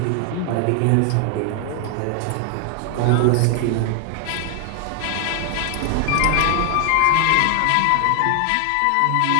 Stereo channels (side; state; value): both; different; correlation 0.00